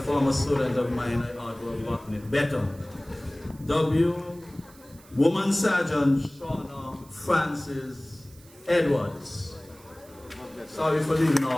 student of mine, I ought to have gotten it better. Woman Sergeant Shauna Francis Edwards. Sorry for leaving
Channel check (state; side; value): noise; right; hiss, 25 dB below the sound